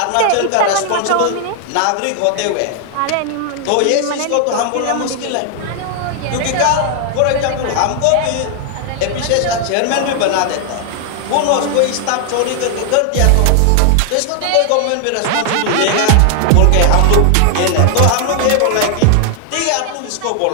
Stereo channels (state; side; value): different; both; correlation 0.00